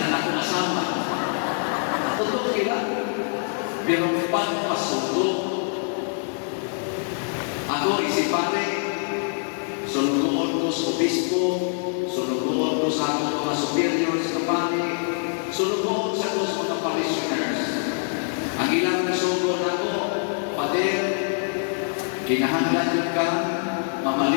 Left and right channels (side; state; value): right; silent; 57 dB below the other